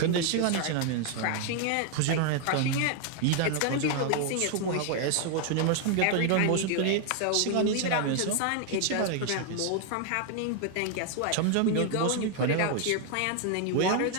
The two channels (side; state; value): both; different; correlation 0.00